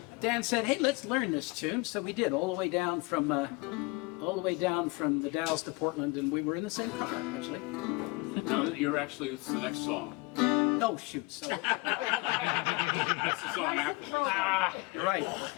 Dan said, "Hey, let's learn this tune." So we did all the way down from the Dalles to Portland, and we were in the same car actually. No, you're actually, it's the next song. Oh shoot! So That's the song after this. you're right.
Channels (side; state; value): right; quieter; 25.8 dB